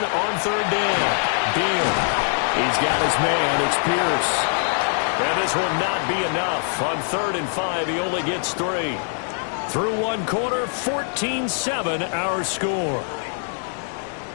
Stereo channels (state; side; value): silent; right; 59 dB below the other